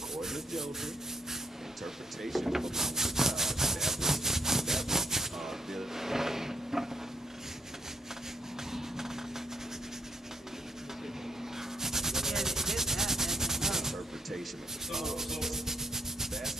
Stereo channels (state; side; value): normal; both; correlation 0.72